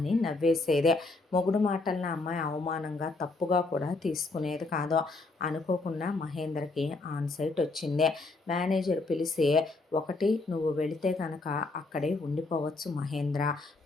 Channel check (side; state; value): right; quieter; 3.4 dB